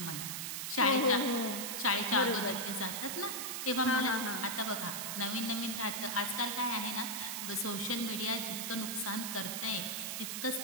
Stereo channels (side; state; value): right; noise; hiss, 3 dB below the sound